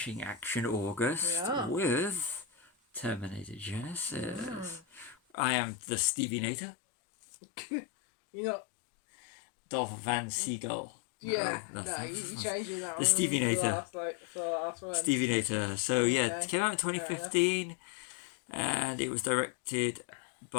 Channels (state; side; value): drops out; right; at 5.2 s